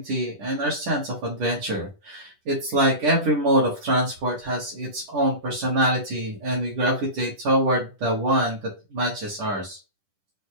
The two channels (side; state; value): left; late; 10 ms